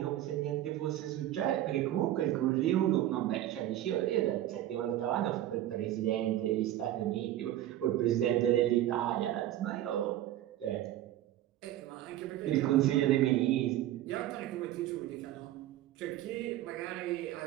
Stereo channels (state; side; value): quieter; left; 13.3 dB